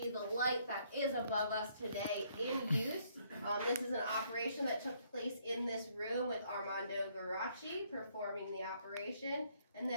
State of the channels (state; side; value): inverted; both; correlation -0.68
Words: the light that is above us today in use. This is an operation that took place in this room with Armando Garaci performing the operation. And